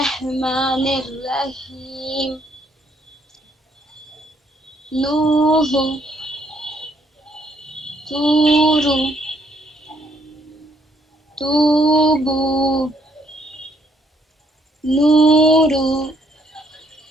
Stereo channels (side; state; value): both; normal; correlation 0.69